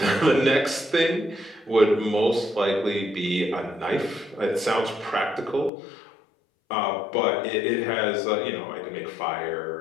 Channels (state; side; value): drops out; right; at 5.7 s